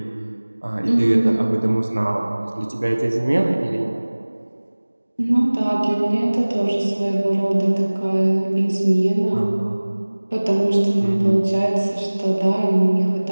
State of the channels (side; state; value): both; inverted; correlation -1.00